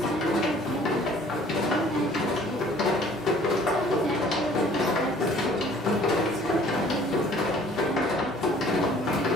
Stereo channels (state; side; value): noise; left; hum, 29 dB below the sound